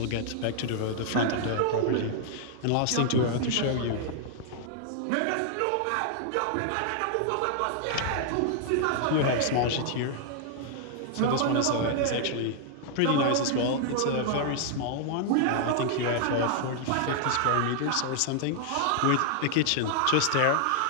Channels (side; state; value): both; different; correlation -0.01